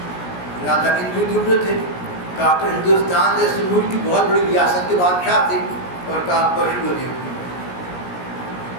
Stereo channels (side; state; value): right; late; 17 ms